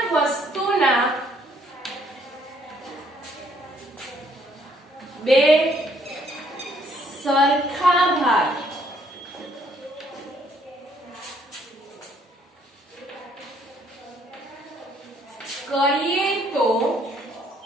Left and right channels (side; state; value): both; normal; correlation 0.66